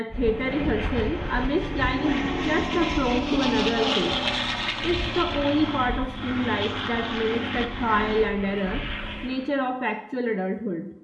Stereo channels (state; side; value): identical; both; correlation 1.00